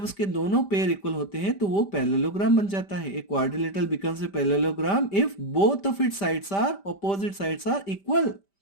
उसके दोनों पेयर इक्वल होते हैं तो वो पैरेललोग्राम बन जाता है। एक quadrilateral becomes a parallelogram if both of its sides are, opposite sides are equal.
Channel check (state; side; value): late; right; 5.1 ms